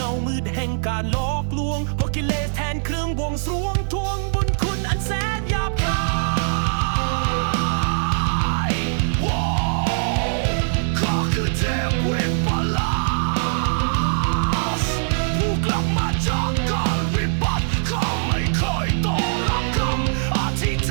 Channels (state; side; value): silent; left; 59 dB below the other